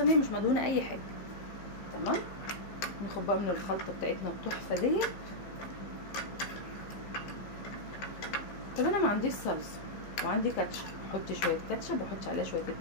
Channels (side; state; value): right; late; 15 ms